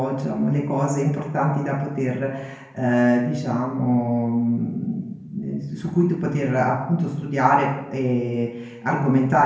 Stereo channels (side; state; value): both; identical; correlation 1.00